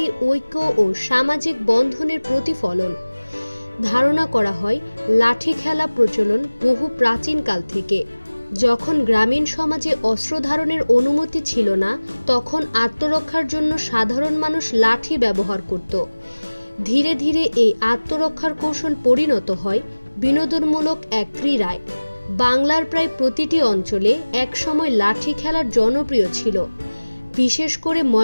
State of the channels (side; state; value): both; inverted; correlation -1.00